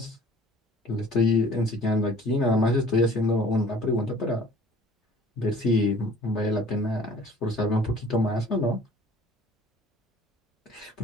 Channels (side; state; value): both; normal; correlation 0.51